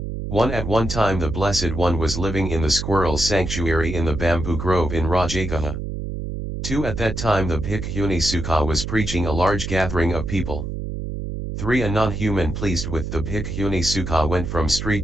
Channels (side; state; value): right; noise; hum, 5 dB below the sound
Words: 1. At one time the Blessed One was living in the squirrel's sanctuary in the bamboo grove in Rajagaha. 2. At that time the Bhikkhuni Sukha was preaching a large gathering of people. 3. A non-human pleased with the Bhikkhuni Sukha went from street